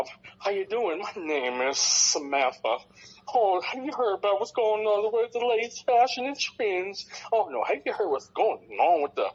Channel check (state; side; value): identical; both; correlation 1.00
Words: How you doing? My name is Samantha. Oh, have you heard about what's going on with the latest fashion and trends? Oh, no, have you heard what's going on with the